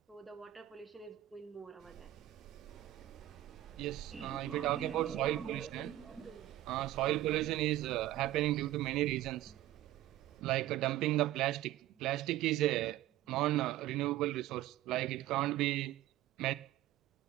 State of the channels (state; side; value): quieter; left; 14.9 dB